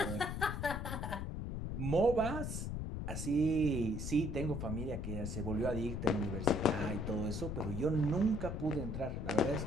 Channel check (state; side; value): noise; left; rumble, 3 dB below the sound